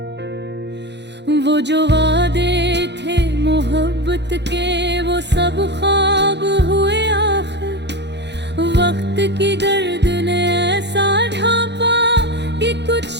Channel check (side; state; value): left; late; 0.50 ms